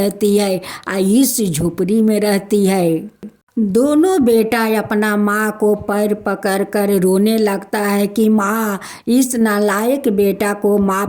है, इस झोपड़ी में रहती है। दोनों बेटा अपना माँ को पैर पकड़ कर रोने लगता है कि माँ, इस नालायक बेटा को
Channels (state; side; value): identical; both; correlation 1.00